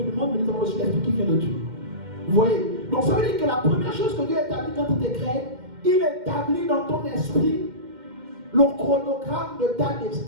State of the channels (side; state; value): left; late; 2.1 ms